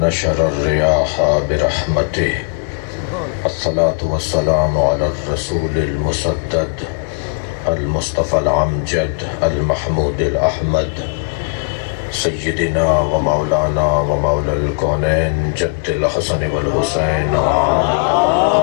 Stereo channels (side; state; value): right; quieter; 36.8 dB